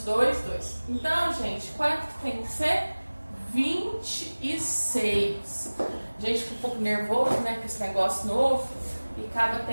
2, 2. Então, gente, quanto que tem que ser? 26. Gente, fica um pouco nervoso, né, com esse negócio novo e acaba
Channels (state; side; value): inverted; both; correlation -1.00